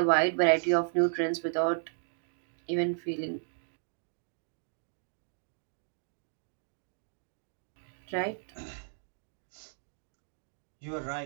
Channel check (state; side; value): silent; left; digital silence